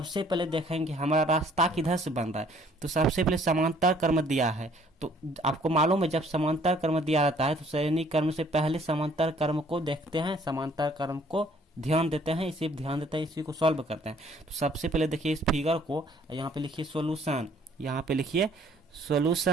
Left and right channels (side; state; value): both; normal; correlation 0.59